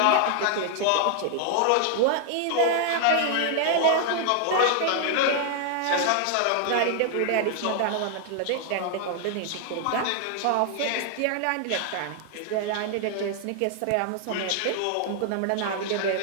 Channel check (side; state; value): both; different; correlation 0.00